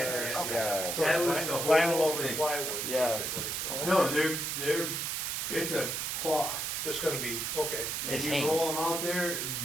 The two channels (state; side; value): noise; right; hiss, 2 dB below the sound